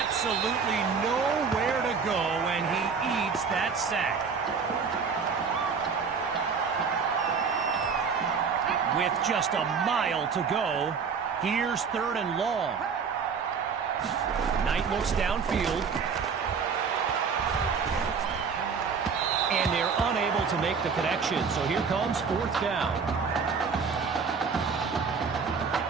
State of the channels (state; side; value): quieter; left; 5.7 dB